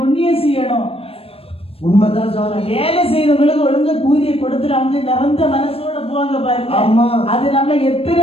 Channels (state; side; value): late; right; 0.28 ms